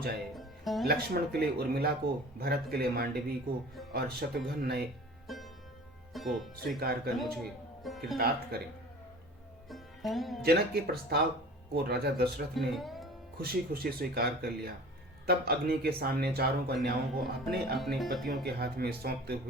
लक्ष्मण के लिए उर्मिला को, भरत के लिए मांडवी को और शत्रुघ्न नए को स्वीकार कर मुझे कृतार्थ करें। जनक के प्रस्ताव को राजा दशरथ ने खुशी खुशी स्वीकार कर लिया। तब अग्नि के सामने चारों कन्याओं को अपने अपने पतियों के हाथ में सौंपते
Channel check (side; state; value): both; normal; correlation 0.42